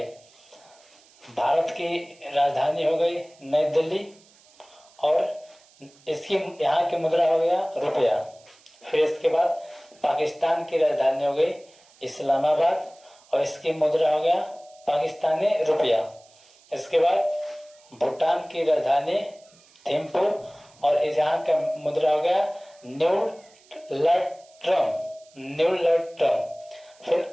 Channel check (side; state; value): right; noise; hiss, 28 dB below the sound